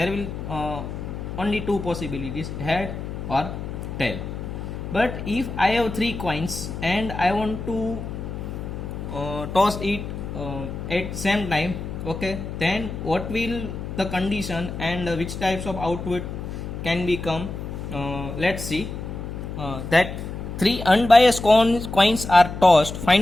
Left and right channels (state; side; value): noise; left; hum, 7 dB below the sound